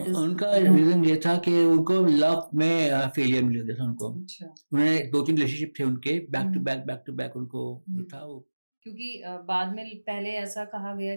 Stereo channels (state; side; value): inverted; both; correlation -1.00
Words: इज़ उनका रीज़न ये था कि उनको लव में फेलियर मिल गया था उनको। अच्छा। उन्होंने 2-3 रिलेशनशिप थे उनके हुँ, बैक टू बैक उनको जो हुँ। था वो क्योंकि बाद में पहले ऐसा कहा गया